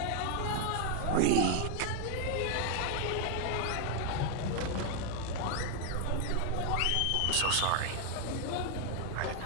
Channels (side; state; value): both; different; correlation 0.00